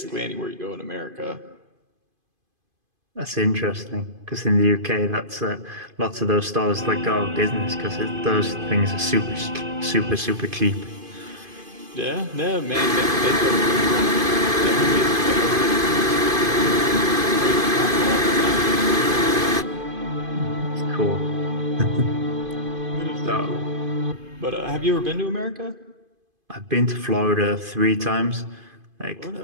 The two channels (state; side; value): late; left; 2.5 ms